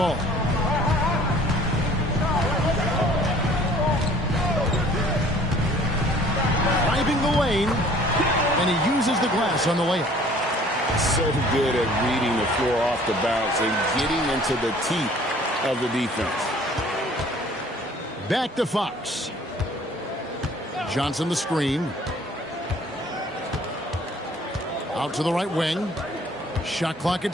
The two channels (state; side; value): normal; both; correlation 0.53